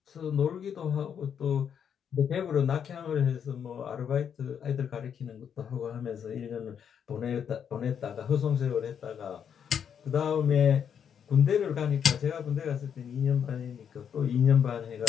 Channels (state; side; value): quieter; right; 8.0 dB